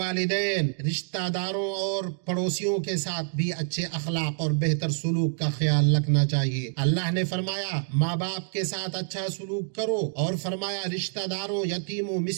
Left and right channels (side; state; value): left; silent; digital silence